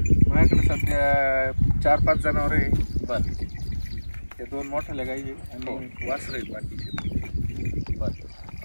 माझ्याकडे सध्या 4-5 जनावर आहे. बरं ते 2 मोठ्या गाई आहे आणि वासरं आहेत बाकीचे. बरं.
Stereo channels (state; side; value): inverted; both; correlation -1.00